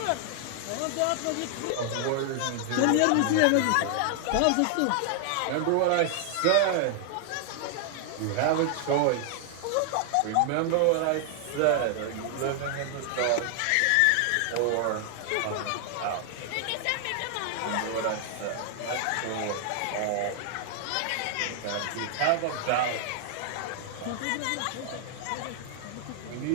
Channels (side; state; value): both; different; correlation 0.00